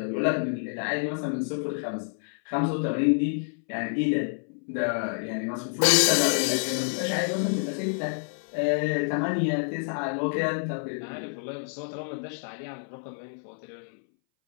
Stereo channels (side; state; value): right; silent; 59 dB below the other